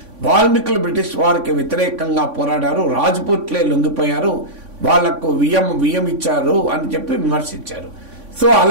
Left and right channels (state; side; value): late; left; 3.5 ms